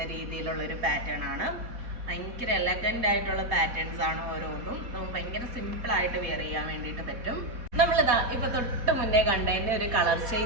രീതിയിലുള്ളൊരു പാറ്റേൺ ആണ്. ഭയങ്കര എലഗൻ്റ് ആയിട്ടുള്ള പാറ്റേൺസ് ആണ് ഓരോന്നും. നമുക്ക് ഭയങ്കര സിമ്പിളായിട്ട് വെയർ ചെയ്യാൻ വേണ്ടിയിട്ട് പറ്റും. നമ്മളിതാ ഇപ്പൊ തൊട്ട് മുന്നേ കണ്ടതിൻ്റെ ഒരു കളർ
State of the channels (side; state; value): left; late; 4.1 ms